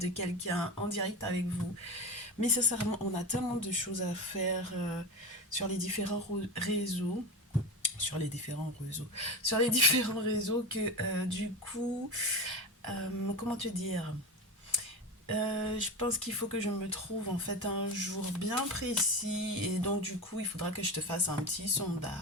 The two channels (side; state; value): both; normal; correlation 0.23